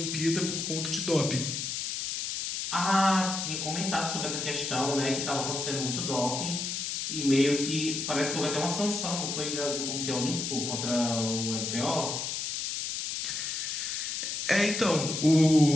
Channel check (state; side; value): noise; left; hiss, 3 dB below the sound